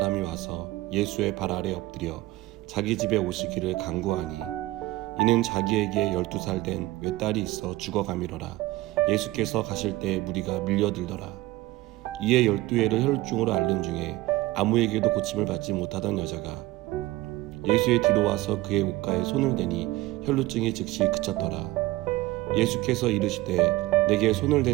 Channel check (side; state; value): left; quieter; 18.6 dB